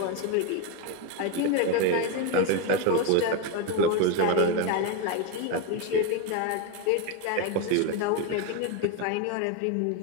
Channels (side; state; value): both; different; correlation 0.02